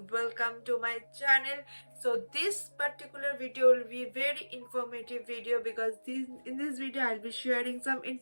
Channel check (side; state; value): both; inverted; correlation -1.00